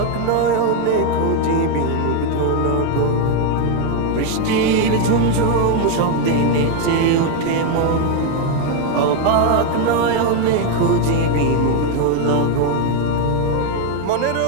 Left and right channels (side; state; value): both; different; correlation 0.01